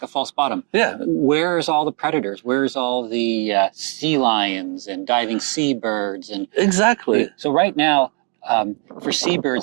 a false bottom. Yeah. Where's all the predators? Where's all the sea lions and diving seabirds? And exactly. So right now, for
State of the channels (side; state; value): left; quieter; 37.9 dB